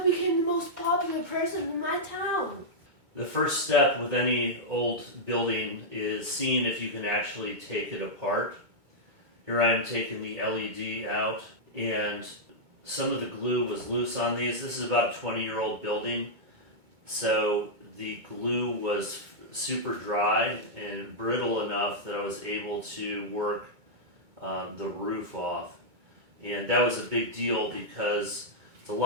became the most popular person in my town. The first step with any old building is seeing if you can actually take it apart. Here I'm taking the LED out, and some of the glue was loose on these. This is about a 20-year-old building, so the glue was super dry and brittle enough that I was able to work the roof off. And that was a big deal because it's a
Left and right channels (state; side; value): late; left; 2.2 ms